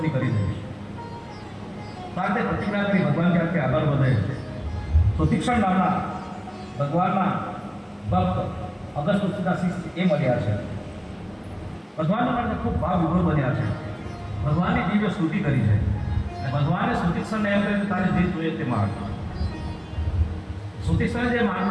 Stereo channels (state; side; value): identical; both; correlation 1.00